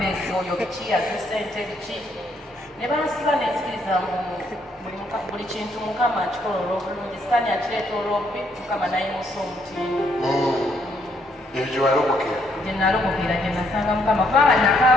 oyo biki yaze ssente biki. Ne bansiba nenzikiriza buli kintu Mukama akikola olw'obulungi. Sitaani akireeta olw'obbi Mukama nayimusa omutindo. Ebyo gye walokokera? Gye nalokokera gye nasanga Mukama kubanga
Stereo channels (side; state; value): both; normal; correlation 0.72